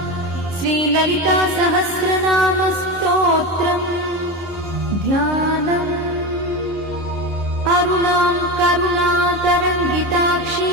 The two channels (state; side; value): late; right; 11 ms